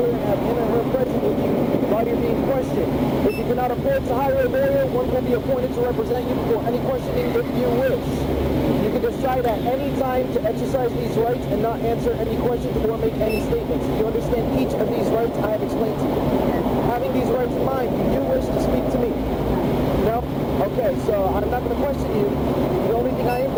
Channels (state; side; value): identical; both; correlation 1.00